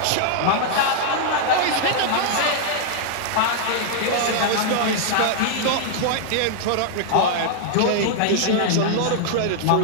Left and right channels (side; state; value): both; different; correlation -0.01